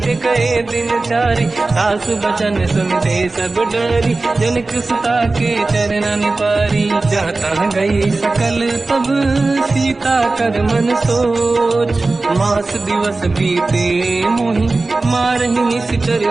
कहे दिन चारी सास बचन सुनते सब डरी जनक सुता के चरण पारी जाता गई सकल तब सीता कर मन सोच मास दिवस बीते मोही मारही निश्चर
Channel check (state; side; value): quieter; left; 3.4 dB